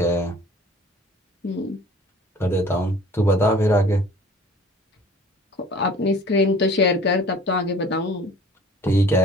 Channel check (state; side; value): normal; both; correlation 0.48